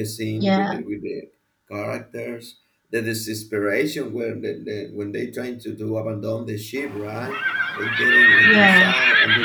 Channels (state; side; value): identical; both; correlation 1.00